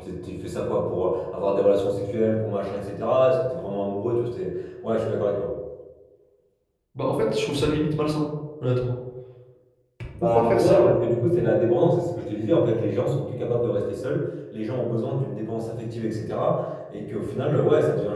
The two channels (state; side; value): identical; both; correlation 1.00